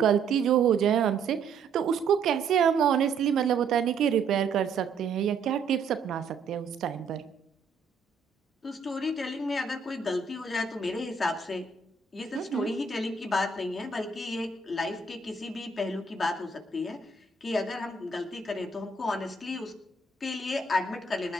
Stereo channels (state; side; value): quieter; left; 4.5 dB